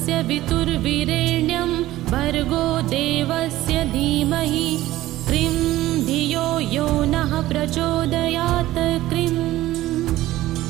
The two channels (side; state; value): left; quieter; 15.7 dB